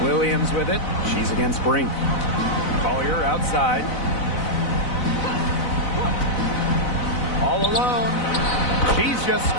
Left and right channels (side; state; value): right; late; 4.0 ms